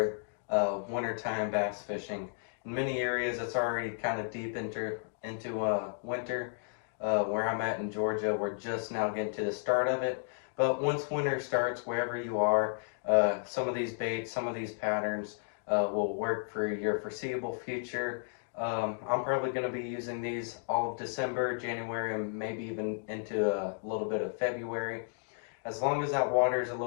wintertime bass fishing. In many areas, it's already kind of deep into winter. Where I'm at in Georgia, we're just now getting to the start of it. But once winter starts, wherever you are, some of these baits, some of these patterns will work for your foreseeable future. I'm probably going to be using these all of December, January, and maybe even into a little bit of February. As long as that water is a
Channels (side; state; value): right; silent; digital silence